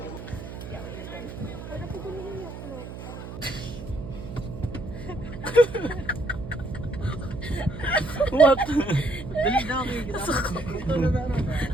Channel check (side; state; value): right; noise; hum, 10 dB below the sound